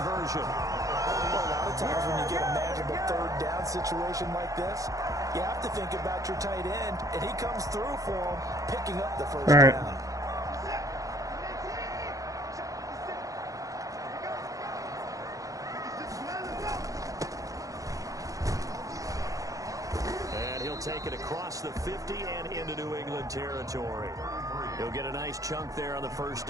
Well, a lot of times when you get a manageable 3rd down situation like this, you have to think about your tight end, and he comes through for him, picking up the 1st down. Take it across the 50 and into New England territory. He'll get a nice chunk there on the 1st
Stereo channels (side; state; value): left; late; 0.17 ms